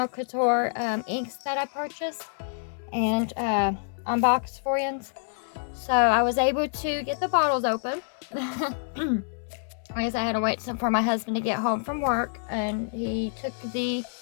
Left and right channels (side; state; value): right; silent; 60 dB below the other